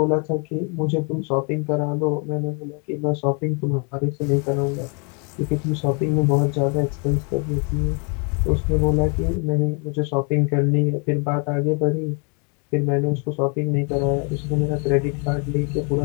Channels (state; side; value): quieter; right; 35.6 dB